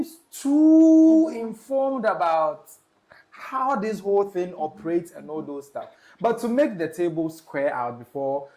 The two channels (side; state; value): both; identical; correlation 1.00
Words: too informed about how this whole thing operates and all those stuff. But to make the table square out before